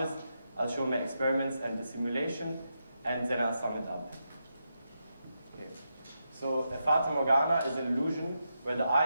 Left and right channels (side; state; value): both; inverted; correlation -0.85